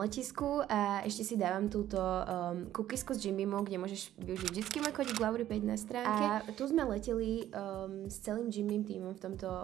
a ešte si dávam túto cookiesku s Jim Beamom, kde môžeš využiť vždycky môj kódik Lauri5 na stránke. A tu sme leteli s celým Jim Beam tímom v tomto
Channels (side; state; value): left; quieter; 12.6 dB